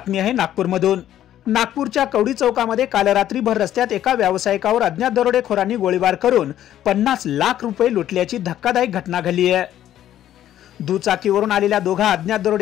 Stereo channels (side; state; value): right; quieter; 11.8 dB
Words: आहे नागपूरमधून. नागपूरच्या कवडी चौकामध्ये काल रात्री भर रस्त्यात एका व्यावसायिकावर अज्ञात दरोडेखोरांनी गोळीबार करून 50 लाख रुपये लुटल्याची धक्कादायक घटना घडली आहे. दुचाकीवरून आलेल्या दोघा अज्ञात